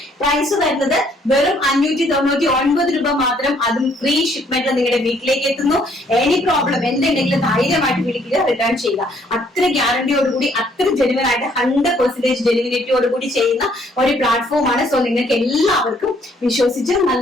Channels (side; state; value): both; normal; correlation 0.65